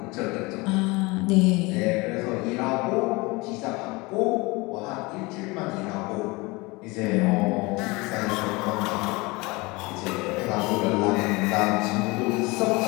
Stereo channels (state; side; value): quieter; right; 24.5 dB